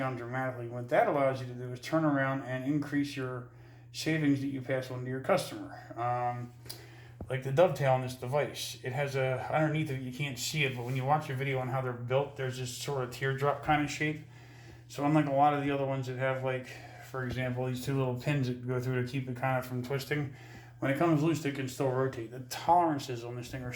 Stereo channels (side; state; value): both; identical; correlation 1.00